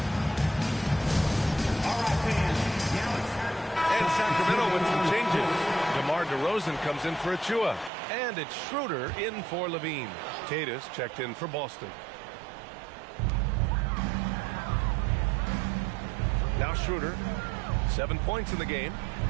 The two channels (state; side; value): drops out; left; at 7.9 s